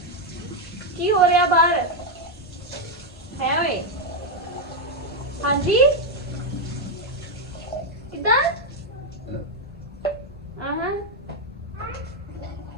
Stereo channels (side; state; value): both; normal; correlation 0.02